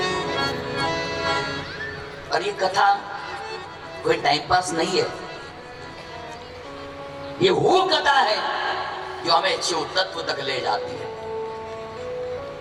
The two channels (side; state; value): both; identical; correlation 1.00